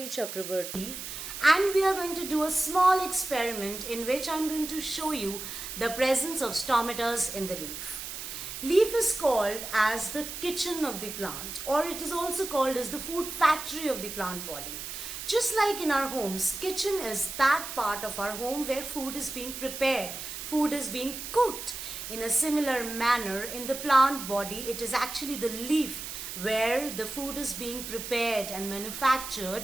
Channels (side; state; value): right; noise; hiss, 8 dB below the sound